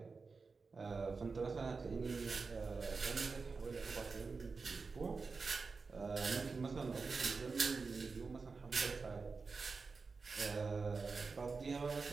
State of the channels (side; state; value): left; quieter; 4.5 dB